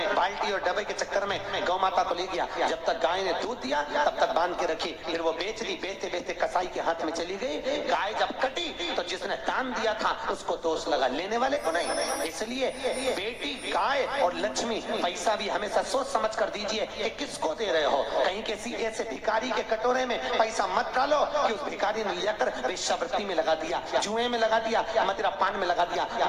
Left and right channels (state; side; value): identical; both; correlation 1.00